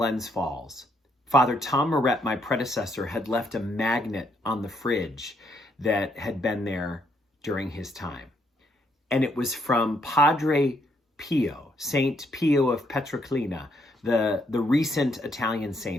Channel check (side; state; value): both; normal; correlation 0.73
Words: Falls, Father Tom Moret, my predecessor, had left a magnet on the fridge that had been there during his time. And it was from Padre Pio, Saint Pio of Pietrelcina, the recent Italian